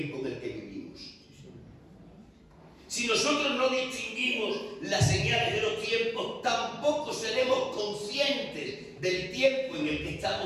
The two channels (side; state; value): both; identical; correlation 1.00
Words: en el que vivimos. Si nosotros no distinguimos las señales de los tiempos, tampoco seremos conscientes del tiempo en el que